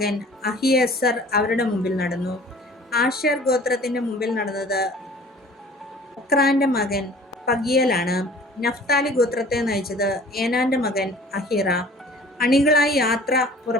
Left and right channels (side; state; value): both; normal; correlation 0.48